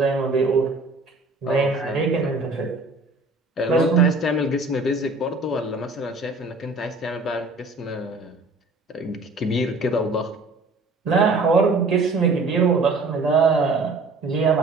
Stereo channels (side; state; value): left; quieter; 3.2 dB